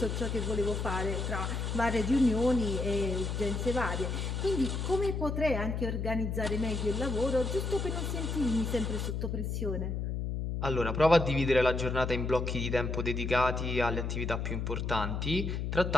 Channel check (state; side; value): noise; left; hum, 2 dB below the sound